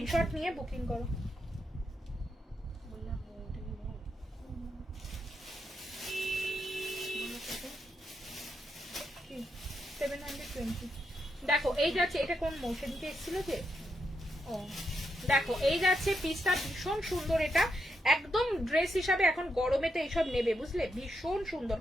নিয়ে বুকিং করো। কি 720। দেখো এই যাচ্ছে, এটা কোন মোশনকে এসেছিল যে, ও দেখো এই যাচ্ছে পিসটা, ভীষণ সুন্দর। এটা একদম ড্রেস হিসাবে এখন গরমে তো এইসব নেবে, বুঝলে, ভীষণ সুন্দর।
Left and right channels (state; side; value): normal; both; correlation 0.82